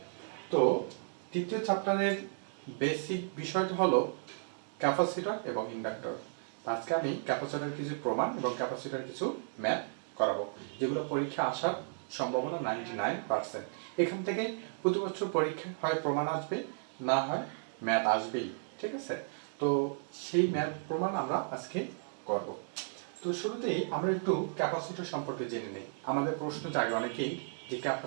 তো তৃতীয় চ্যাপ্টারের বেসিক বিষয়টা হলো ক্যাপাসিটর এবং ইন্ডাক্টর। আজকে আমি ক্যাপাসিটরের কিছু প্রমাণ এবং ক্যাপাসিটরের কিছু ম্যাথ করাবো, যেগুলো পরীক্ষা আসার সম্ভাবনা 99%। এখান থেকে প্রতি বছর পরীক্ষা হয় প্রমাণ আসবে, না হয় ম্যাথ আসবেই। ঠিক আছে, তো সেই ম্যাথ প্রমাণ আমরা আজকে করব। তো শুরুতেই আমরা একটু ক্যাপাসিটর সম্পর্কে জেনে নিই। আমাদের প্রশ্ন জাগে অনেকেই যে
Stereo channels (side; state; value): left; silent; digital silence